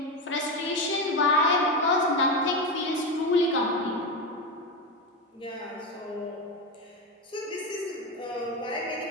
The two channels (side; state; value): both; normal; correlation 0.15